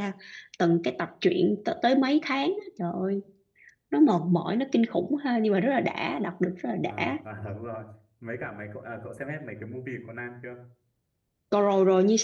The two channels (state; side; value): identical; both; correlation 1.00